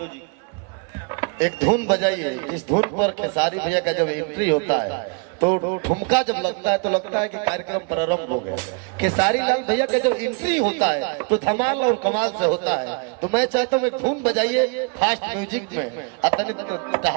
एक धुन बजाइए। इस धुन पर खेसारी भैया का जब एंट्री होता है तो ठुमका जब लगता है तो लगता है कि कार्यक्रम प्रारंभ हो गया। खेसारी लाल भैया का जब एंट्री होता है तो धमाल और कमाल से होता है। तो मैं चाहता हूँ एक धुन बजाइए फास्ट म्यूजिक में,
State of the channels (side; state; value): left; quieter; 35.2 dB